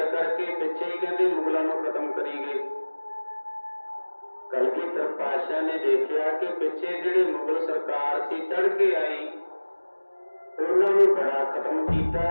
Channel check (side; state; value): both; inverted; correlation -1.00